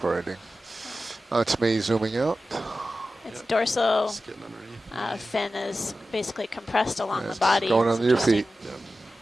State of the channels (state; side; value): normal; both; correlation 0.94